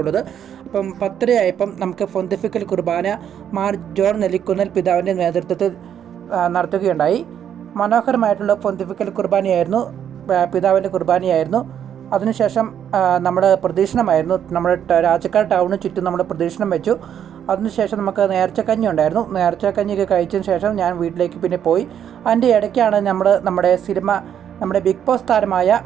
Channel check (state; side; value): quieter; left; 9.3 dB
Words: ഉള്ളത്. അപ്പം 10:30 നമുക്ക് പൊന്തിഫിക്കൽ കുർബാന മാർ ജോൺ നെല്ലിക്കുന്നൽ പിതാവിൻ്റെ നേതൃത്വത്തിൽ നടത്തുകയുണ്ടായി. മനോഹരമായിട്ടുള്ള പൊന്തിഫിക്കൽ കുർബാനയായിരുന്നു, പിതാവിൻ്റെ കുർബാനയായിരുന്നു. അതിനുശേഷം നമ്മൾ പ്രദക്ഷിണമായിരുന്നു. നമ്മുടെ രാജക്കാട് ടൗണിന് ചുറ്റും നമ്മൾ പ്രദക്ഷിണം വെച്ചു. അതിനുശേഷം നമുക്ക് നേർച്ചക്കഞ്ഞി ഉണ്ടായിരുന്നു. നേർച്ചക്കഞ്ഞിയൊക്കെ കഴിച്ചതിന് ശേഷം ഞാൻ വീട്ടിലേക്ക് പിന്നെ പോയി. അതിൻ്റെ ഇടയ്ക്കാണ് നമ്മുടെ സിനിമ, നമ്മുടെ ബിഗ് ബോസ് താരമായ